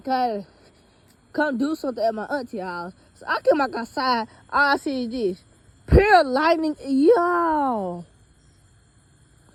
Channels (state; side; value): identical; both; correlation 1.00